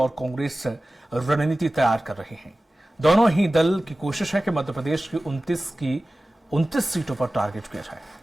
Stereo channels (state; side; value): normal; both; correlation 0.97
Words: कांग्रेस रणनीति तैयार कर रहे हैं। दोनों ही दल की कोशिश है कि मध्य प्रदेश की 29 सीटों पर टारगेट किया जाए।